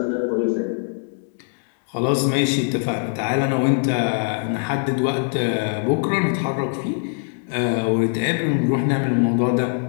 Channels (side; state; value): right; silent; 64 dB below the other